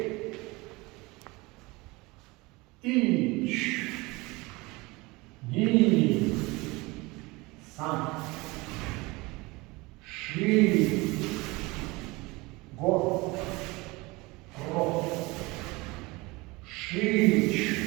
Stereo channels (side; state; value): left; quieter; 23.4 dB